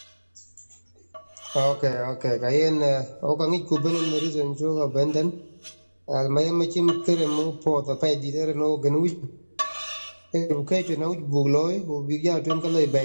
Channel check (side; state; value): both; inverted; correlation -1.00